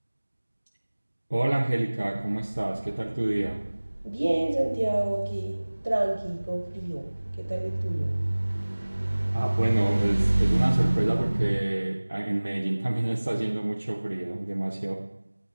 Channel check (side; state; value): both; inverted; correlation -1.00